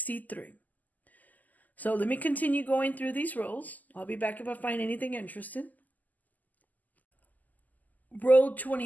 So let me continue going through these rows. I'll be back if I find anything interesting. Row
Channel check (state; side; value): late; right; 0.081 ms